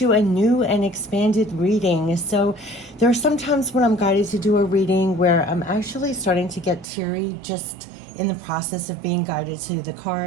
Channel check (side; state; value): left; drops out; at 6.9 s